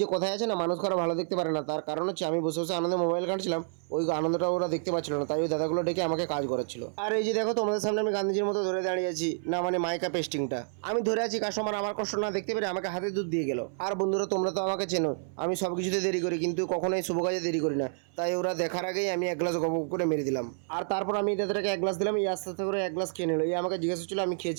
যে কথায় আছে না, মানুষ কারো ভালো দেখতে পারে না, তার কারণ হচ্ছে আমি বসে বসে আনন্দে মোবাইল ঘাঁটছিলাম, ওই আনন্দটা ওরা দেখতে পাচ্ছিল না, তাই ওই দাদাগুলো ডেকে আমাকে কাজ করাচ্ছিল। আর এই যে দেখো তোমাদের সামনে আমি গান্ধীজির মতো ধরে দাঁড়িয়ে আছি, না মানে মাইকা পেস্টিংটা আমি ধরে আছি, কাস্টমার আমার কষ্ট না দেখতে পেরে আমাকে হাতে দুধ দিয়ে গেল। আর বন্ধুরা তোমরা তো আমাকে চেনো, আমি সব কিছুতে দেরি করি, কিন্তু কখনোই শুভ কাজে দেরি করি না, তাই ওরা দেখার আগেই আমি এক গ্লাস গপ করে মেরে দিলাম। আর তারপর আমি দাদাটাকে এক গ্লাস দিলাম, এই আস্তে আস্তে করে এক গ্লাস খেয়ে নিল। এই আমাকে জিজ্ঞাসা ছিল আমি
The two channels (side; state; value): left; silent; 58 dB below the other